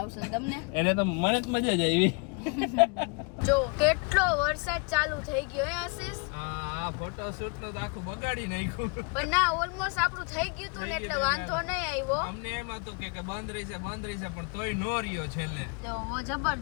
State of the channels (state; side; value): quieter; right; 33.7 dB